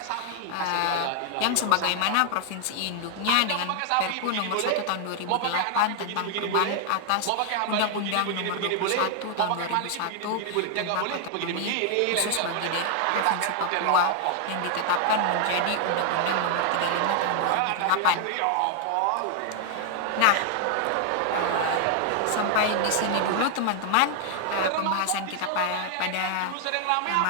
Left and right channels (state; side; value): different; both; correlation 0.00